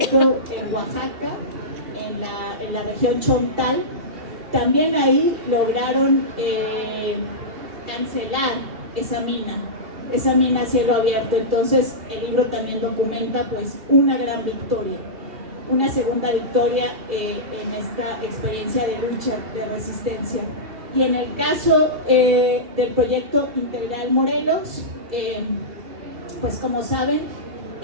en Oaxaca, en la región Chontal, también ahí lograron cancelar esa mina a cielo abierto. Entonces el libro también documenta pues una gran victoria, una segunda victoria en esta experiencia de lucha, de resistencia. Y en el caso del proyecto Integral Morelos, pues como saben,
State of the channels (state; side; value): late; left; 2.8 ms